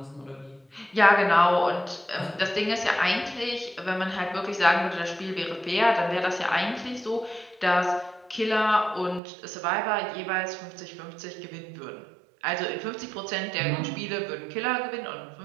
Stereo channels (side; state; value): left; drops out; at 9.2 s